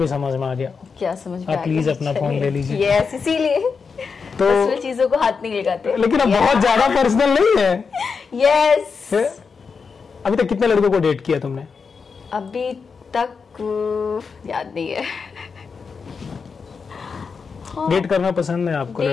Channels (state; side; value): quieter; right; 5.4 dB